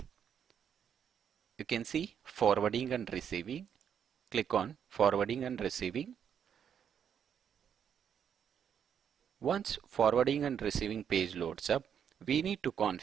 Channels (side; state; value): left; quieter; 8.3 dB